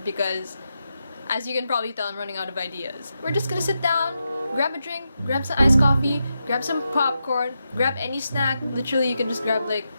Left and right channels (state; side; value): inverted; both; correlation -0.87